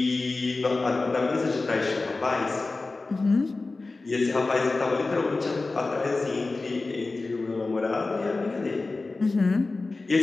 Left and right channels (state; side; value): quieter; right; 3.5 dB